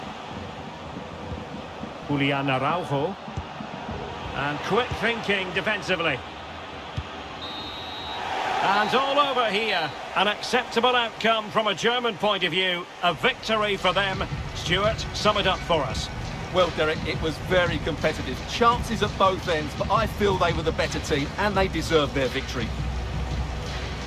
Julian Araujo. And quick thinking defensively. And all over here. An acceptable outcome from a German point of view. A victory for them. Stuart, sum it up for us. Well, Derek, it was very competitive. Chances at both ends, but I feel they were the better team and they deserved their victory.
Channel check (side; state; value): both; identical; correlation 1.00